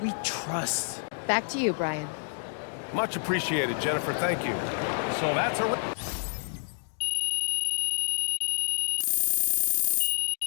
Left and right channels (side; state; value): right; silent; digital silence